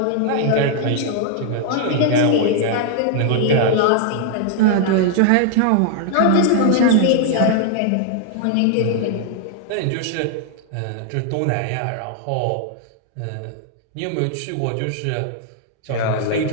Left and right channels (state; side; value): different; both; correlation 0.00